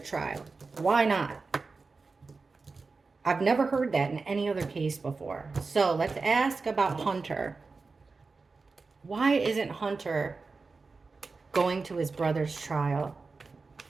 Why not? I've never heard that in any other case before. So let's ask about Hunter. Why isn't Hunter going to his brother's trial?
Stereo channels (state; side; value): quieter; left; 4.2 dB